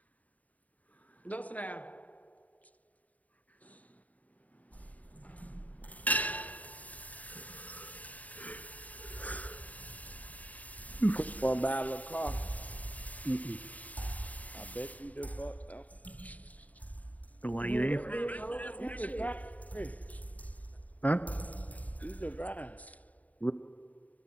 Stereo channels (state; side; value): late; right; 0.072 ms